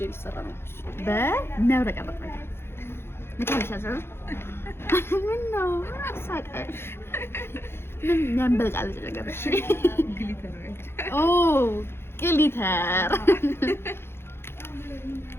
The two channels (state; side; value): late; right; 0.11 ms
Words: ሊሰራ ነው በሚያብረቀርቅ ነገር ምታልሻለሽ። ምን ነው ሳቀሽ? ምን ያንበለጫለጭ ነገር? እሺ ግሊተር ኦ ግሊተር